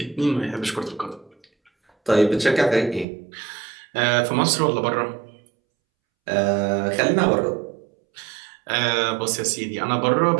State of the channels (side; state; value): left; drops out; at 3.1 s